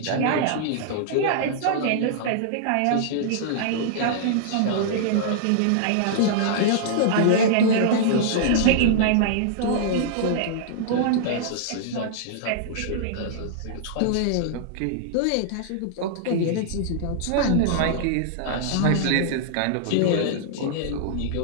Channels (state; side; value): different; both; correlation -0.02